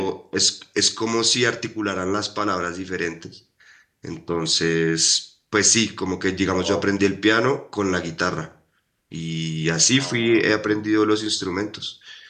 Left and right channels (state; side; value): identical; both; correlation 1.00